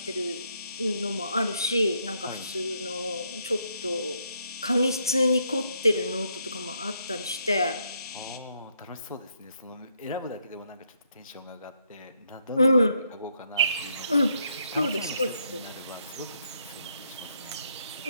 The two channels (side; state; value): both; inverted; correlation -0.75